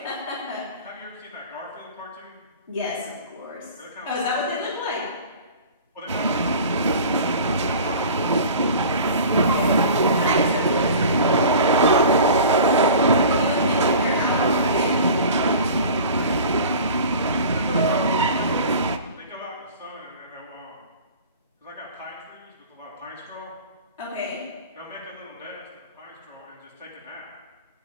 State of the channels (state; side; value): inverted; both; correlation -0.41